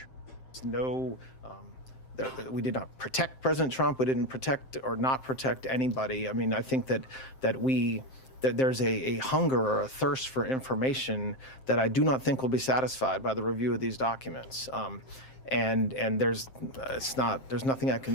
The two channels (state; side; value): late; right; 7.6 ms